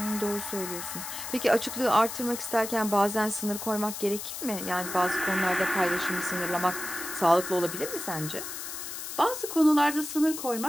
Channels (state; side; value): noise; left; hiss, 7 dB below the sound